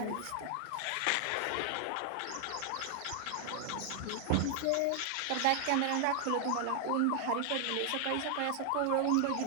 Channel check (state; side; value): different; both; correlation 0.00